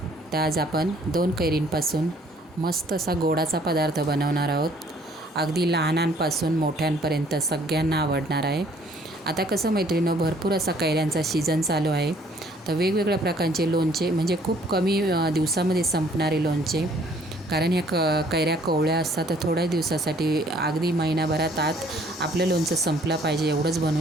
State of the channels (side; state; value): both; normal; correlation 0.60